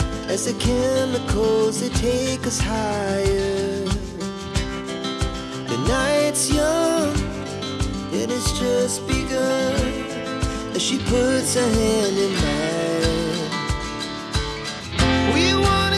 as the chemicals they take us higher. The night's young, it has just begun. As she puts her hand in mine, we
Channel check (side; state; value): both; identical; correlation 1.00